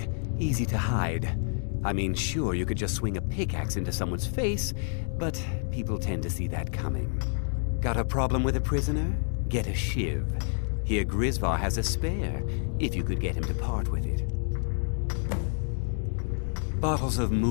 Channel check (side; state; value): right; silent; 59 dB below the other